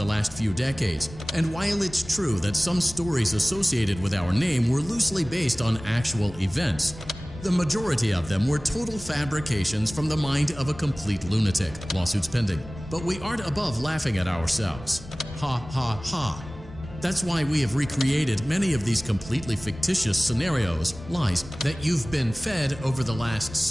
last few decades, and while it's true that some stories associated with our name were loosely based on actual events, the majority of them were total fabrications from the mind of a complete lunatic. Lawsuits pending. But we aren't above laughing at ourselves. Ha ha ha. That's why we have recreated many of these completely fictitious scenarios, lies, that you've been fed over the last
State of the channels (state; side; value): normal; both; correlation 0.98